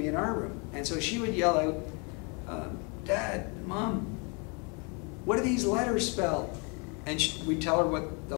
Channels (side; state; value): right; quieter; 33.6 dB